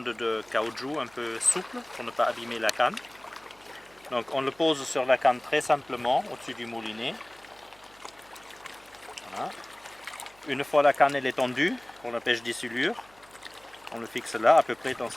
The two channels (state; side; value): noise; right; hum, 29 dB below the sound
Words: de caoutchouc un peu souples pour ne pas abîmer la canne. Donc on le pose sur la canne très simplement au-dessus du moulinet. Voilà. Une fois la canne elle est tendue pour la pêche des silures, on le fixe là, à peu près dans